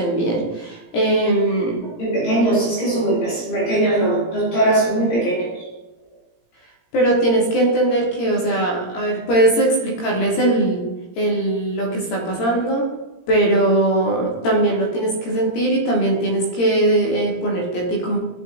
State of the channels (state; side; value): late; right; 17 ms